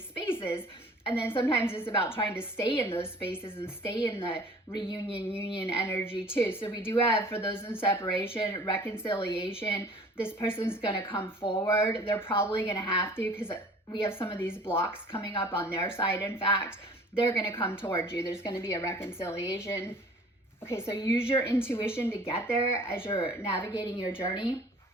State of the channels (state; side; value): normal; both; correlation 0.49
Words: spaces. And then sometimes it's about trying to stay in those spaces and stay in the reunion, union energy too. So we do have, for those in separation, reconciliation. This person's going to come forward. They're probably going to have to, because we have some of these blocks coming up on their side. In fact, they're going to come towards you. There's going to be a reconciliation. Okay, so use your intuition to get there as you're navigating your journey.